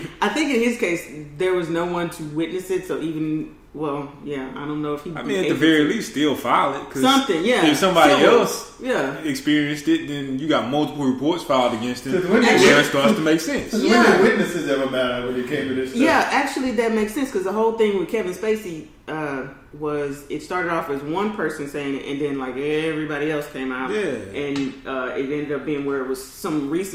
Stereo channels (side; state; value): both; identical; correlation 1.00